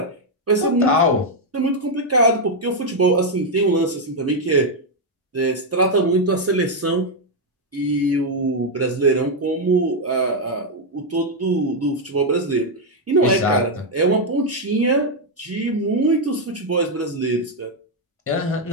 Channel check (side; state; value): both; normal; correlation 0.01